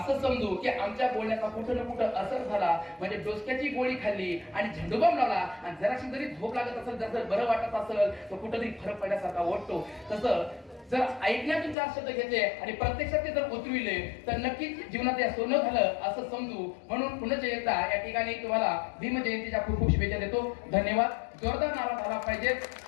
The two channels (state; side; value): drops out; right; at 11.8 s